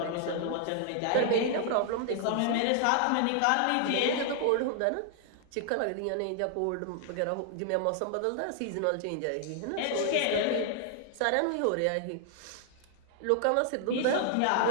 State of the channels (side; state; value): both; different; correlation 0.00